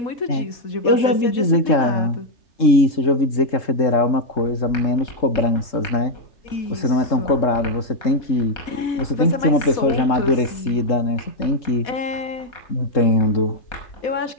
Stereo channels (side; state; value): right; late; 3.7 ms